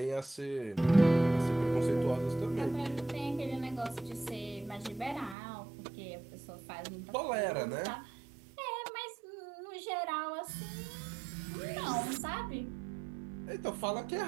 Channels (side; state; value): left; drops out; at 5.4 s